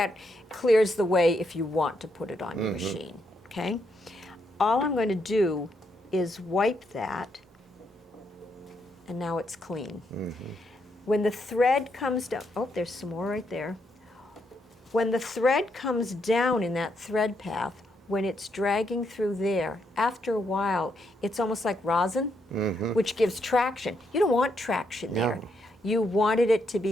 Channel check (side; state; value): both; normal; correlation 0.78